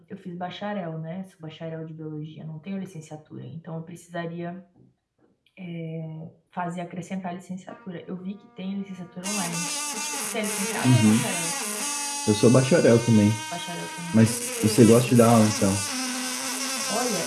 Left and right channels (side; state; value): both; identical; correlation 1.00